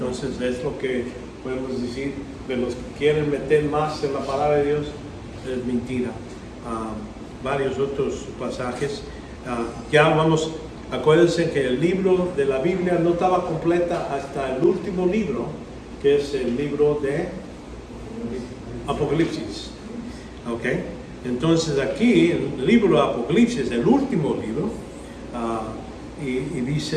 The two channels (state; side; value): identical; both; correlation 1.00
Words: es lo que podemos decir de los que quieren meter más en la palabra de Dios, es mentira. Varios otros pasajes. Acuérdense que el libro de la Biblia no estaba completa hasta el último libro, que es el libro de Apocalipsis. ¿Ok? Entonces aquí, el libro de Apocalipsis, el último libro, y